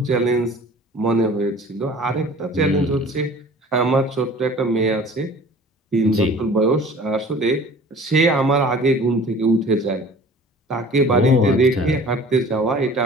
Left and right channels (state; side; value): normal; both; correlation 0.46